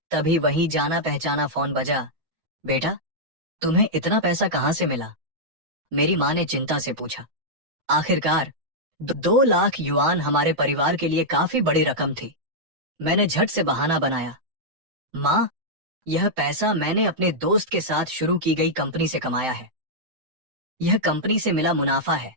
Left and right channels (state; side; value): late; left; 7.8 ms